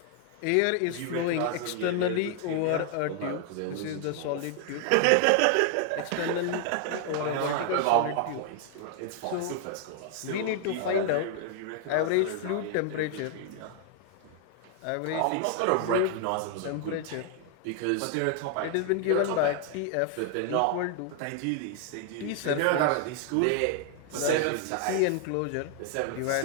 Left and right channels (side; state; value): both; different; correlation 0.00